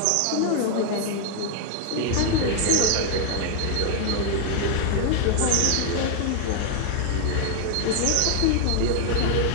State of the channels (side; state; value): both; different; correlation 0.00